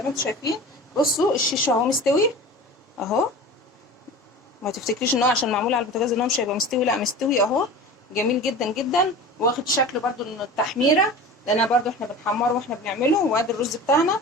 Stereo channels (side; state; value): both; normal; correlation 0.35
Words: ما انتم شايفين. بصوا الشيش اهو مستوي اهو. ما تفتكريش ان هو عشان معمول على البوتاجاز ان هو مش هيبقى مستوي، لا مستوي اهو، جميل جدا جدا، واخد شكل برده التحميره، لان برده احنا بنحمره واحنا بنعمله. وادي الرز بتاعنا.